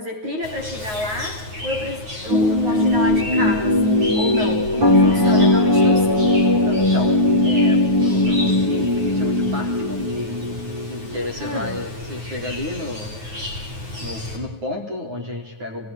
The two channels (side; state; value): left; late; 9.4 ms